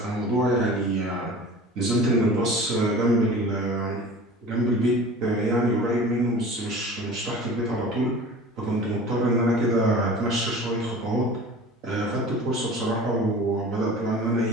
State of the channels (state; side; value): normal; both; correlation 0.40